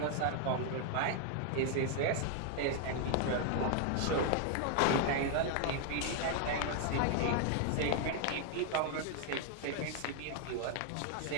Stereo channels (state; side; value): different; both; correlation 0.00